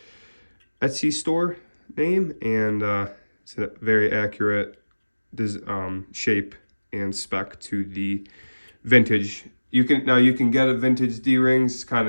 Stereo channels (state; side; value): inverted; both; correlation -1.00